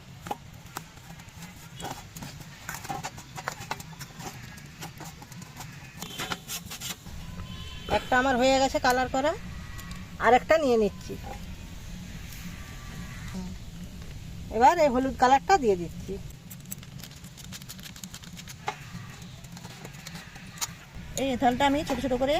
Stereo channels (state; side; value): identical; both; correlation 1.00